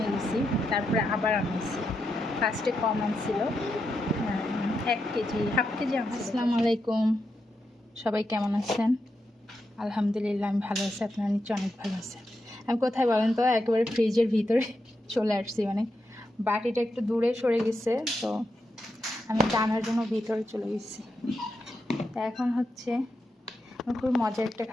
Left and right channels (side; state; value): both; normal; correlation 0.85